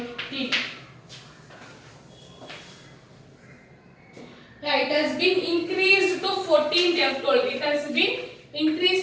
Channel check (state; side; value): identical; both; correlation 1.00